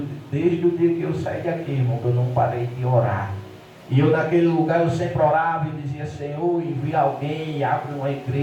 desde o dia que eu saí daqui, irmão, eu não parei de orar. E eu naquele lugar, eu sempre orava e dizia: Senhor, envia alguém, abre uma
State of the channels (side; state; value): both; identical; correlation 1.00